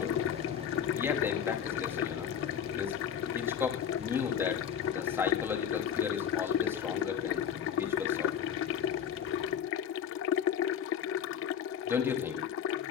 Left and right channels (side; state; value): right; quieter; 8.5 dB